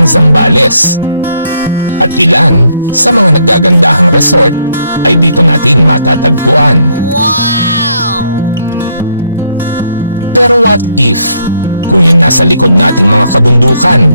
Zambales. At ilan sa mga naggagandahang resort ay dito natin matatagpuan. Pero what if kung yung nasa likod nating mga kabundukan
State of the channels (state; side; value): inverted; both; correlation -0.73